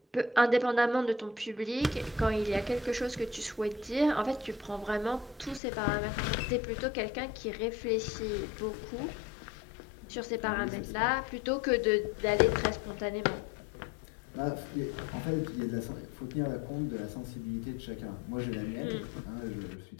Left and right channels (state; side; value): drops out; right; at 5.6 s